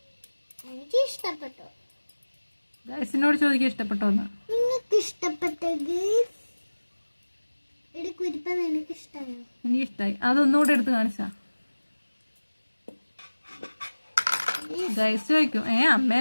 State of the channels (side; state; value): both; inverted; correlation -1.00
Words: എനിക്ക് ഇഷ്ടപ്പെട്ടു. ഗൈസിനോട് ചോദിക്കാൻ ഇഷ്ടപ്പെട്ടോന്ന്. നിങ്ങൾക്ക് ഇഷ്ടപ്പെട്ടത് കുരിപ്പ നിനക്ക് ഇഷ്ടമായോ? എനിക്ക് ഇഷ്ടമായി. അതൊന്നുകൂടെ എടുത്ത് കാണിച്ചാ ഗൈസ് ചോദിക്കും